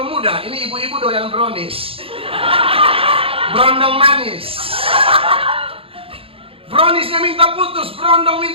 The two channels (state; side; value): late; left; 0.27 ms